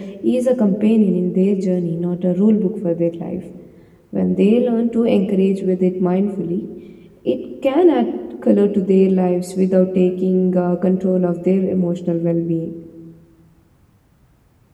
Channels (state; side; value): identical; both; correlation 1.00